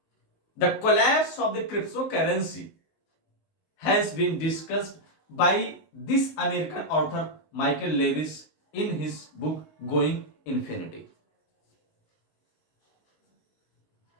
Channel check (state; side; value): late; right; 19 ms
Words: The collapse of the cryptocurrency has been discussed by this American author Michael Lewis in his book Going Infinity.